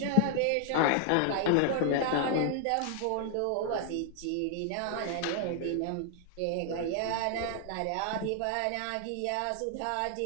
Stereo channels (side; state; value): both; different; correlation 0.00